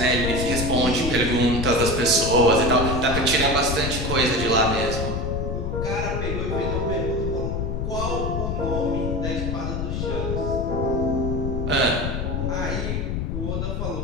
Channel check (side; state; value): left; noise; rumble, 2 dB below the sound